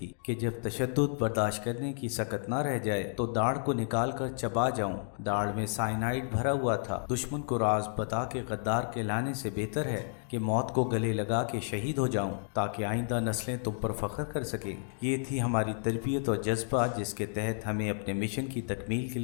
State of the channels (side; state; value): right; silent; digital silence